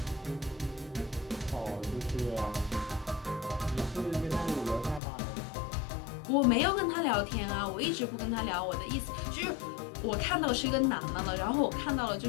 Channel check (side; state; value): right; drops out; at 5.0 s